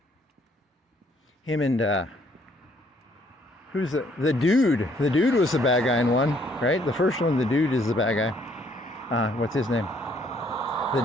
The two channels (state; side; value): normal; both; correlation 0.65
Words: and who's the dude? The dude was the bad guy in one, right? The first one, the dude is the bad guy. What's his name? The